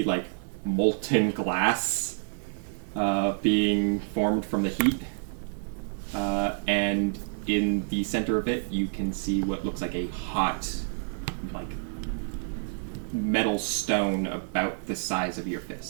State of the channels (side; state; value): left; silent; 59 dB below the other